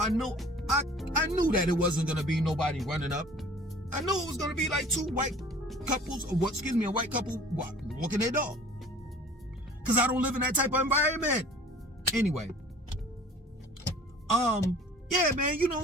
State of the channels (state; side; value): normal; both; correlation 0.48